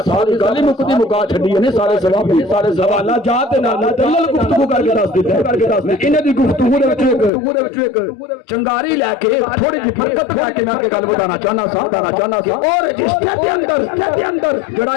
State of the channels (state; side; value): drops out; right; at 7.3 s